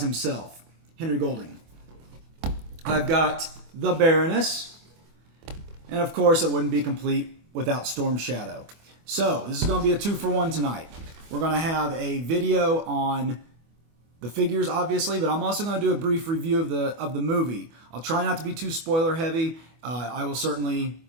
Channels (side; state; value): left; late; 24 ms